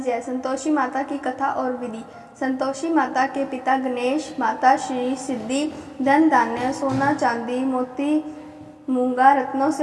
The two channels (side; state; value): both; identical; correlation 1.00